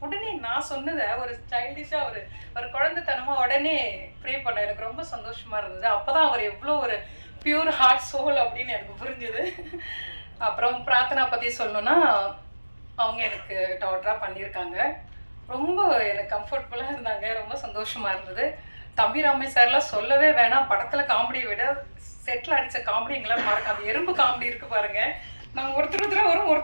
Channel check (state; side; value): inverted; both; correlation -1.00